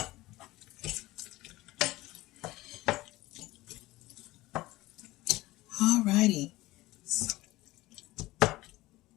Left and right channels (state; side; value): quieter; right; 18.7 dB